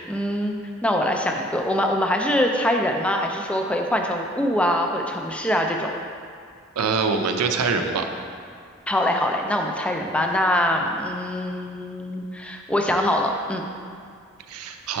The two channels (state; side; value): normal; both; correlation 0.56